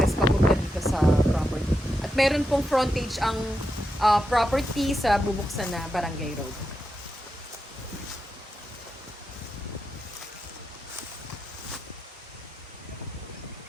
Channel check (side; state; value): both; normal; correlation 0.87